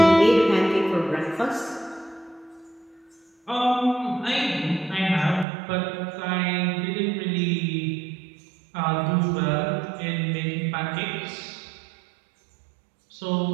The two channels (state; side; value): drops out; left; at 5.5 s